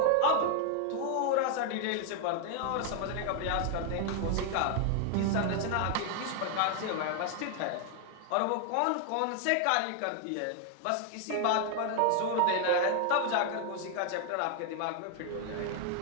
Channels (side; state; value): both; different; correlation 0.00